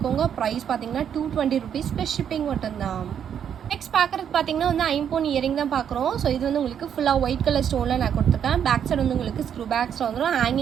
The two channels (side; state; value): left; quieter; 8.6 dB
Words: ப்ரைஸ் பார்த்தீங்கன்னா 220 rupees ப்ளஸ் ஷிப்பிங் மட்டும்தான். நெக்ஸ்ட் பார்க்குறது பார்த்தீங்கன்னா வந்து ஐம்பொன் இயரிங் தான் பார்க்குறோம். ஸோ இது வந்து உங்களுக்கு ஃபுல்லாக ஒயிட் கலர் ஸ்டோனில் நான் கொடுத்துருக்கேன். பேக் சைடு வந்து உங்களுக்கு ஸ்க்ரூ பேக்ஸில் வந்துடும்.